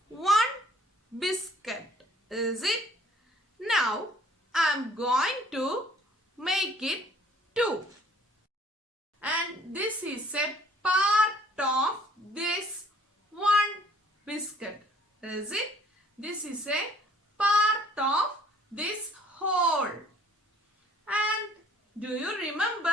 one biscuit, is it? Now I am going to make it two. And this is a part of this one biscuit, is it? This is a part of this whole. And do you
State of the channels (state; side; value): normal; both; correlation 0.58